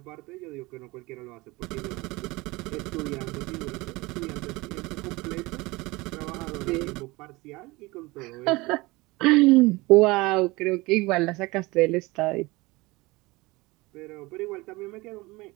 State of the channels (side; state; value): left; quieter; 22.5 dB